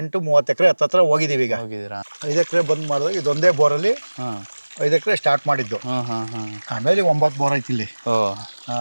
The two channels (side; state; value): both; inverted; correlation -1.00